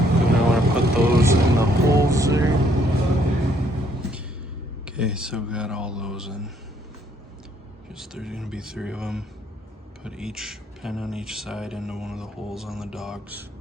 Put those in the holes there. Okay, so we got all those in. There's gonna be 3 of them. Put each pin on each side into one of the holes on the dogs.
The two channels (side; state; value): both; normal; correlation 0.68